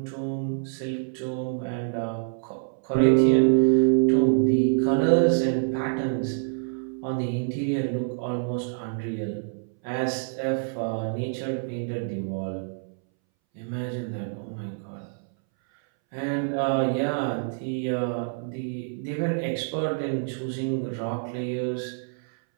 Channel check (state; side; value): silent; left; 61 dB below the other